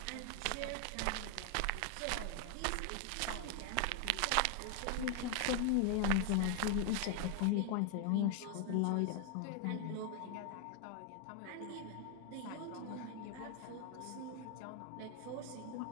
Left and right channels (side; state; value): both; different; correlation 0.00